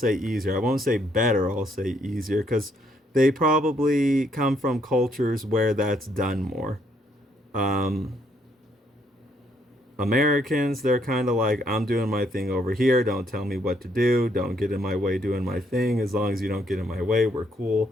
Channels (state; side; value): normal; both; correlation 0.71